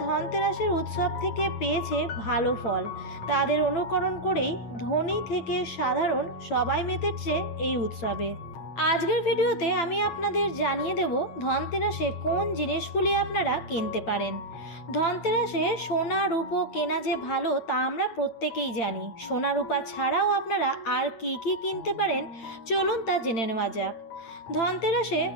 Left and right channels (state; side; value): late; right; 8.8 ms